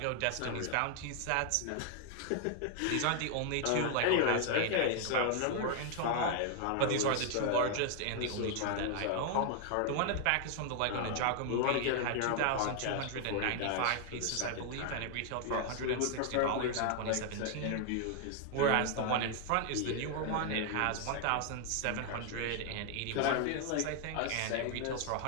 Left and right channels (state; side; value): different; both; correlation 0.00